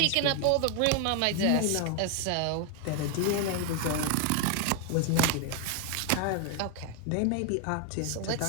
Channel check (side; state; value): both; different; correlation 0.01